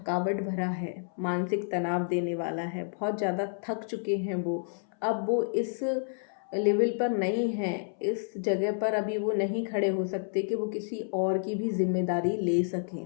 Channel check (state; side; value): silent; right; 58 dB below the other